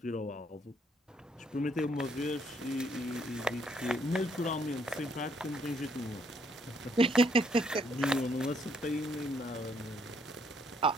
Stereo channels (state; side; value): normal; both; correlation 0.70